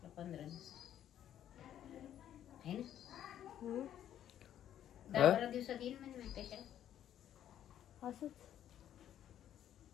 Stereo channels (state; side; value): quieter; right; 10.8 dB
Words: 15 दिवस आहे ना. 10-12 दिवसात येईल म्हणजे माहिती कशाला. असंच.